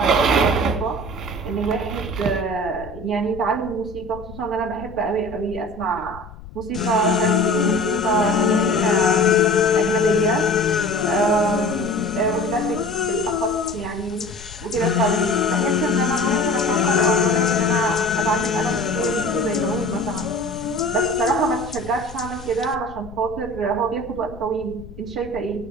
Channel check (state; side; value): noise; left; rumble, 17 dB below the sound